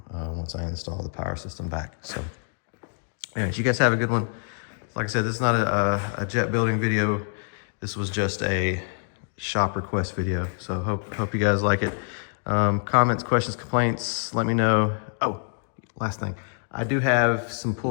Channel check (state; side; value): silent; right; 61 dB below the other